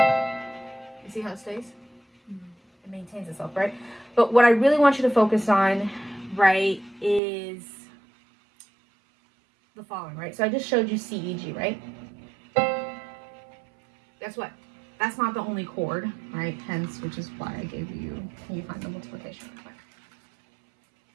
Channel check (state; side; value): drops out; left; at 7.2 s